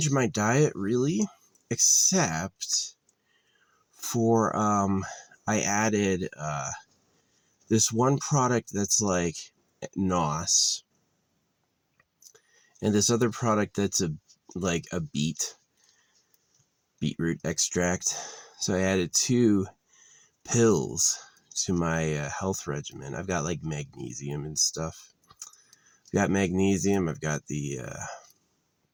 my diet really, except for I added this one product that's like NOS, and this other product that's like a beetroot extract. So I added 2 pills to my health regimen. I've got like magnesium and stuff. I've got magnesium. I've got the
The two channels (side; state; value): both; identical; correlation 1.00